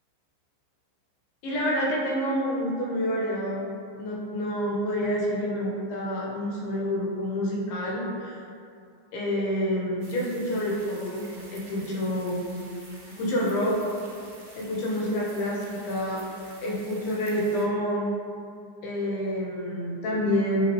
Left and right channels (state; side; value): late; right; 15 ms